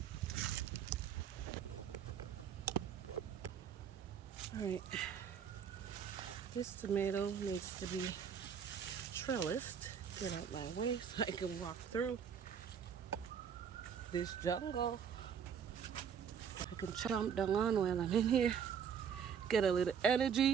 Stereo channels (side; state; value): left; quieter; 7.6 dB